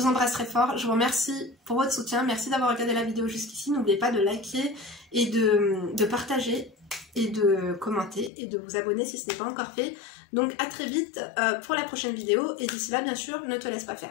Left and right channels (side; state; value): right; drops out; at 8.3 s